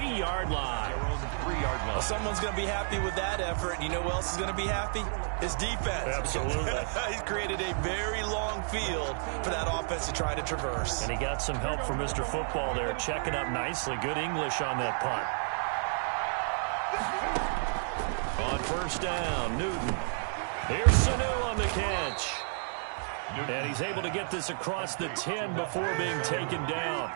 line. Well, someone's going to be happy with that effort. You know who else is going to be happy? His defense. Absolutely. He's created a very long field for that offense to try to traverse. And he got some help from Mr. Football there, checking up nicely. Good English on that punt. On first down, Newton. Here's Sanu on the catch. And he's able to get this across the 10 before being taken down.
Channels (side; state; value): left; silent; digital silence